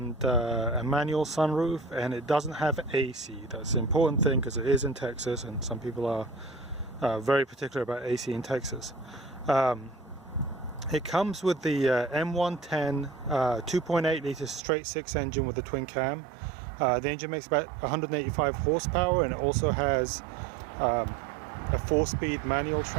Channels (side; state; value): left; drops out; at 14.6 s